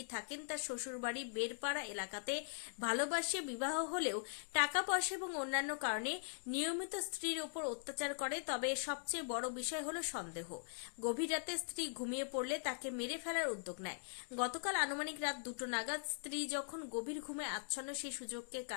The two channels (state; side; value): silent; right; digital silence